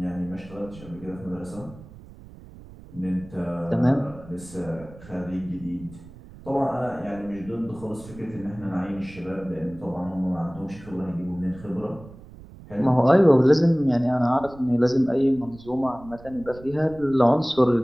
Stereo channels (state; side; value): noise; right; rumble, 19 dB below the sound